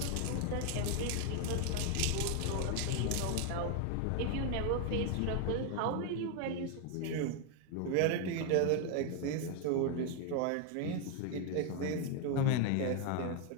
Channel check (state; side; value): different; both; correlation 0.00